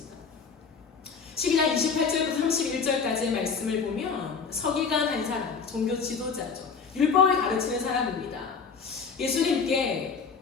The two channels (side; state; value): right; quieter; 5.6 dB